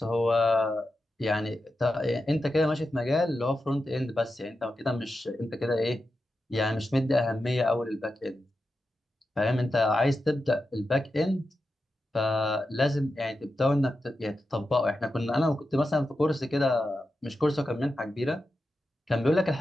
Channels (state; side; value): normal; both; correlation 0.90